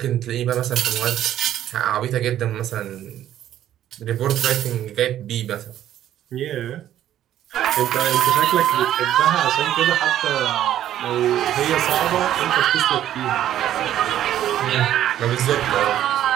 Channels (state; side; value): quieter; left; 11.8 dB